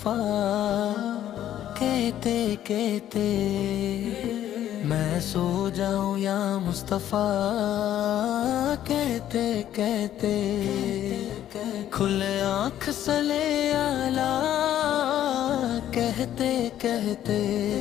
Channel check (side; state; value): right; quieter; 11.6 dB